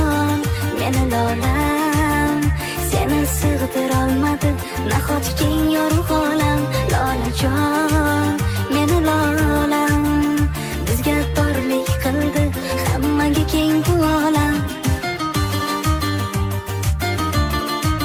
meni lolam, seni sig'dirolmadi nahot keng yorug' olam. Lolajon, meni lolam, bizga torlik qildi hammaga keng bu olam.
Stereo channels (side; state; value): both; identical; correlation 1.00